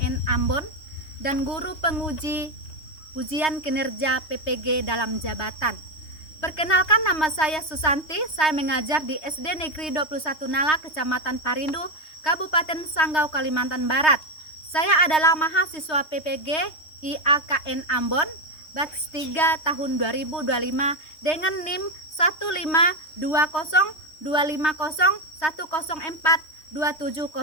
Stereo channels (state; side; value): late; right; 3.2 ms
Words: Ambon dan guru penguji ujian kinerja PPG dalam jabatan. Perkenalkan, nama saya Susanti, saya mengajar di SD Negeri 21 Nala, Kecamatan Parindu, Kabupaten Sanggau, Kalimantan Barat. Saya adalah mahasiswa PPG IAKN Ambon, batch 3 tahun 2025 dengan NIM